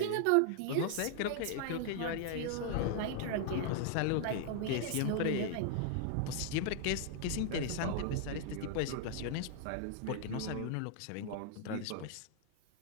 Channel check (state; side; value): different; both; correlation 0.00